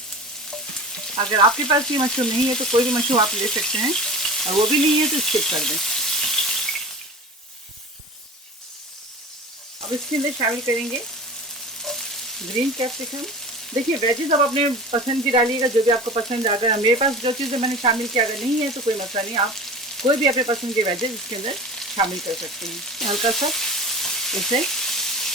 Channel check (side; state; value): both; normal; correlation 0.35